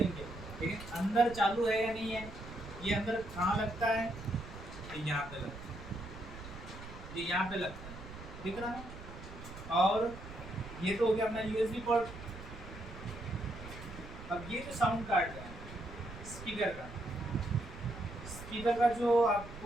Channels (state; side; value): noise; right; rumble, 13 dB below the sound